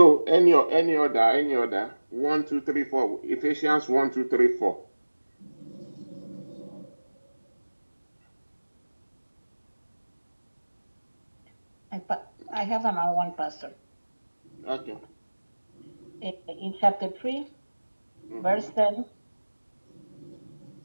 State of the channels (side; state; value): both; inverted; correlation -1.00